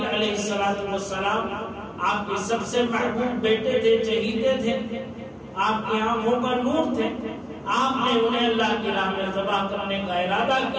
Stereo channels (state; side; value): identical; both; correlation 1.00